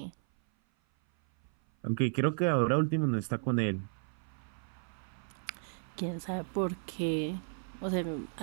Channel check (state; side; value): silent; left; 55 dB below the other